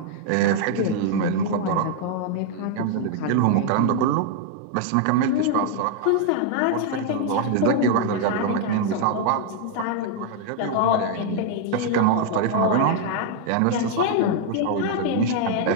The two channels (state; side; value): different; both; correlation 0.00